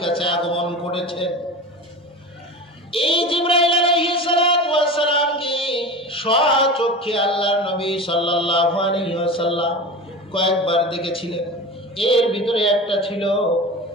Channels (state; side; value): normal; both; correlation 0.31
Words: কাছে আগমন করেছে। এই জিবরাইল আলাইহিস সালাতু ওয়াস সালামকে স্বচক্ষে আল্লাহর নবী সাল্লাল্লাহু আলাইহি ওয়াসাল্লাম কয়েকবার দেখেছিলেন। এর ভিতরে একটা ছিল